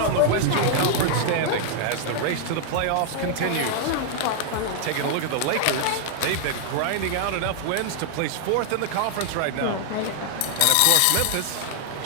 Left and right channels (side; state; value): both; different; correlation 0.00